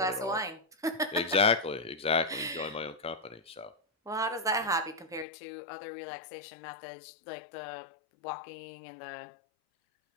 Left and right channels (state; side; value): drops out; right; at 5.2 s